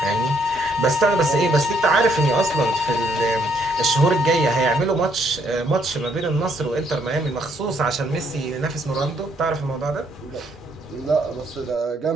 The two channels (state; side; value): normal; both; correlation 0.70